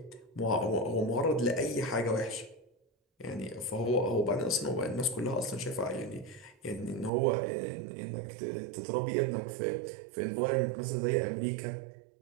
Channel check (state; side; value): drops out; left; at 7.1 s